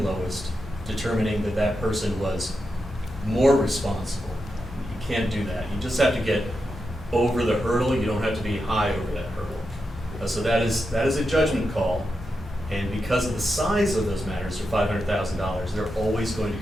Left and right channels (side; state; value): both; normal; correlation 0.87